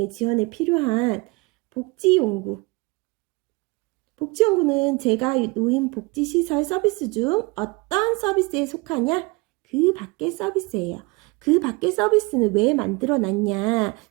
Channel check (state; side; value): quieter; left; 26.4 dB